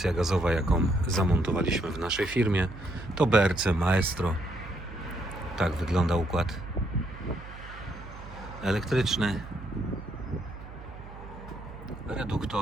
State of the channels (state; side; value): noise; right; hum, 14 dB below the sound